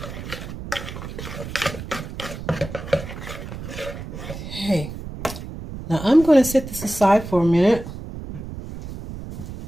Okay, now I'm going to set this aside for a minute.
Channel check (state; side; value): noise; right; rumble, 10 dB below the sound